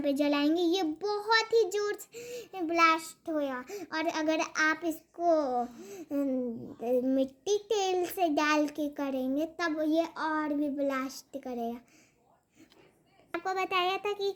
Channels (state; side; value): identical; both; correlation 1.00